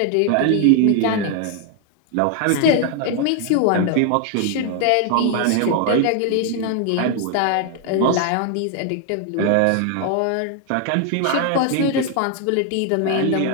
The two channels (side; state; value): both; different; correlation 0.00